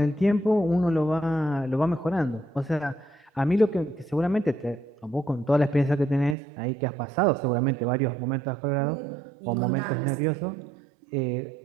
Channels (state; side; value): drops out; left; at 6.4 s